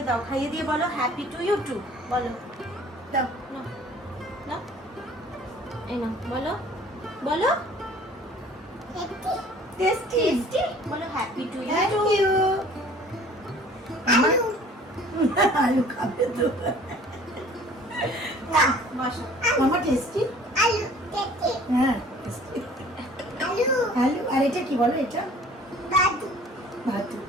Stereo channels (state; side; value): normal; both; correlation 0.51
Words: দাও, খাইয়ে দিয়ে বলো হ্যাপি টু ইউ টু বলো। দাও। নাও নাও, এই নাও বলো বলো টেস্টি। টেস্টি বলো happy to you thank to. You. আলু খাবে তো। বসো। মামা টেস্টি। হ্যাঁ tasty। আলু আর এটা কি বলো, এটা ভাতু। একটু